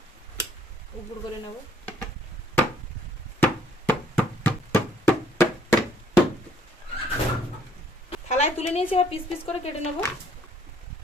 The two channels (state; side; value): normal; both; correlation 0.63